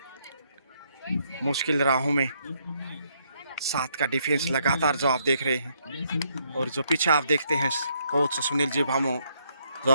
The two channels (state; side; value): inverted; both; correlation -0.73